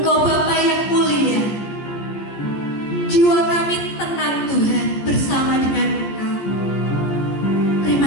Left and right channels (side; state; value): right; late; 14 ms